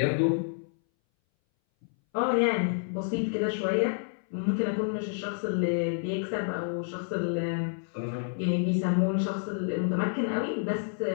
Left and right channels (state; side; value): silent; right; 58 dB below the other